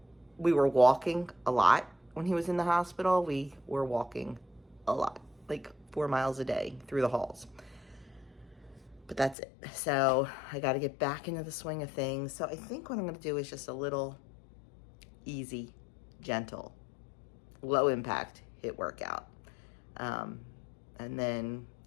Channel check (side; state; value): right; drops out; at 9.3 s